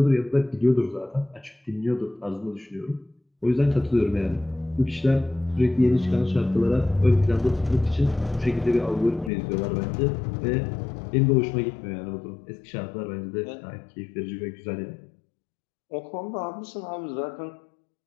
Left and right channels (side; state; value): right; drops out; at 9.3 s